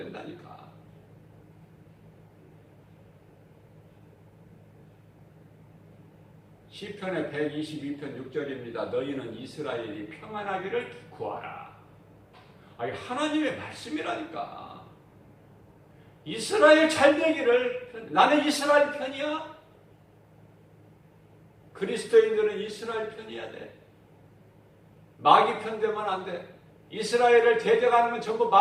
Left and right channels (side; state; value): both; identical; correlation 1.00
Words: 시편의 122편 6절입니다. 너희는 이스라엘이 평안하기를 구하라. 아니 하나님의 말씀이라니까. 이스라엘 잘 되기를. 나는 이스라엘 편이야. 그리스도인들은 이스라엘 편이야 돼. 마귀 편 되면 안 돼. 이스라엘을 대적하는 건 전부